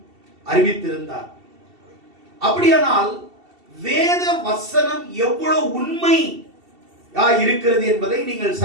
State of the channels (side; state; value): left; late; 2.7 ms